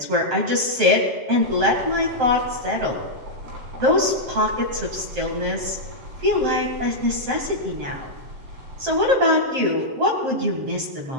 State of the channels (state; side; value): late; left; 7.6 ms